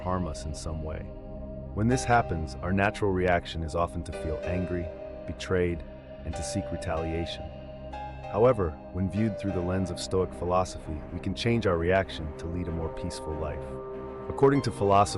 us in some way. When this happens, our natural reaction is often to feel angry, betrayed, and to seek retaliation. However, when viewed through the lens of Stoic philosophy, we can change our reaction to lead a more peaceful life. According to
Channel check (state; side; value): identical; both; correlation 1.00